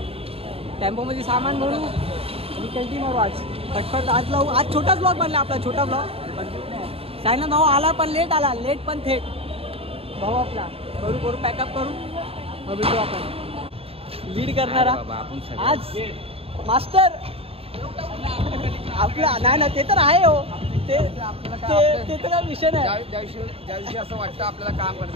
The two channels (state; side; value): late; left; 0.28 ms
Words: टेम्पोमध्ये सामान भरू आणि कंटिन्यू मारू आज पटपट. आज छोटाच ब्लॉग बनला आपला, छोटा ब्लॉग. सायना भाऊ आला पण लेट आला, लेट पण थेट भाऊ आपला. करू पॅकअप करू, मग भेटू आपण. लीड करणारा आज मास्टर आपला. नाही ना, ते तर आहे हो, ते तर काय विषय नाही. ज्या दिवशी असं वाटतं आपल्याला काम